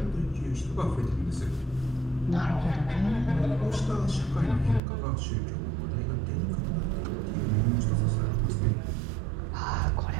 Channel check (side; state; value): left; drops out; at 4.8 s